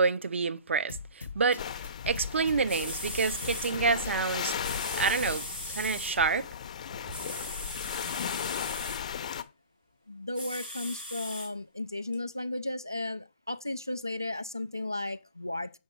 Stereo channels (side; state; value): both; inverted; correlation -0.42